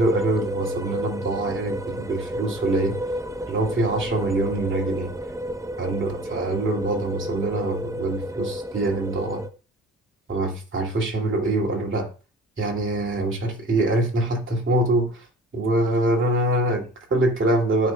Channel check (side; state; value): both; normal; correlation 0.44